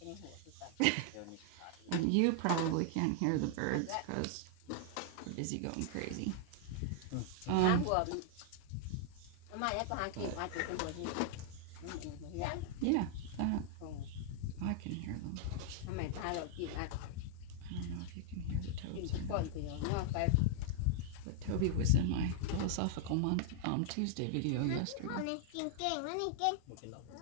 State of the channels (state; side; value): different; both; correlation -0.01